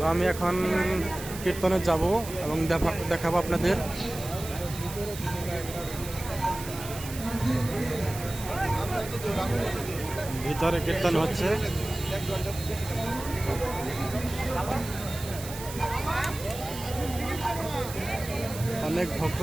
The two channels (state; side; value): noise; right; hiss, 12 dB below the sound